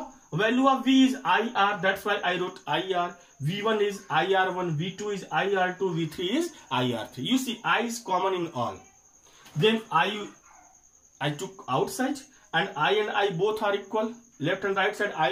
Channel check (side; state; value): both; identical; correlation 1.00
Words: value of V is IR, that's why I wrote IR. V1 is IR1, V2 is IR2, V3 is IR3. You see I is common in all. Then I took outside, and I both are equal. Left and right side